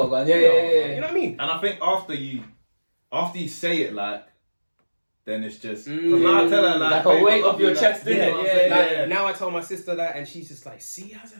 I'm going. Yeah. You know what I mean? And I think after you say it, like, then it's just, because now I tell her, like a weight off your chest, innit? Yeah. Now I tell my sister that, and she's just like, see, how's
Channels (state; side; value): inverted; both; correlation -1.00